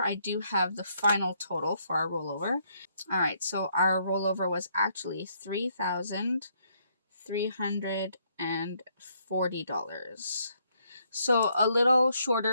I do have the final total for our rollover. All right, so our rollover was actually $3,340. So a little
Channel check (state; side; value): inverted; both; correlation -0.72